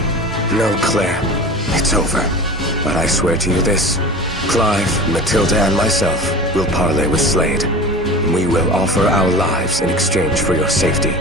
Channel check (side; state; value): both; normal; correlation 0.35